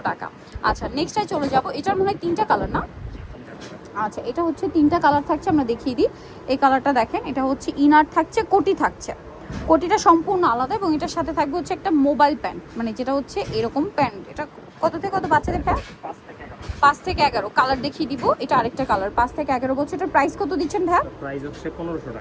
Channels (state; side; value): identical; both; correlation 1.00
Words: টাকা। আচ্ছা, নেক্সটটায় চলে যাব। এটার মনে হয় তিনটা কালার না? আচ্ছা, এটা হচ্ছে তিনটা কালার থাকছে, আমরা দেখিয়ে দিই। এই কালারটা দেখেন, এটা হচ্ছে ইনার থাকছে, কোটি থাকছে। কোটিটা সম্পূর্ণ আলাদা এবং এটার সাথে থাকবে হচ্ছে একটা মোবাইল প্যান্ট, মানে যেটা হচ্ছে এরকম প্যান্ট। এটা কত থেকে কত বাচ্চাদের প্যান্ট? 5 থেকে 11 কালার দেখিয়ে দিব। এটা আরেকটা কালার, 5 থেকে 11 বছর। এটার প্রাইস কত দিচ্ছেন ভাইয়া? প্রাইস হচ্ছে 1500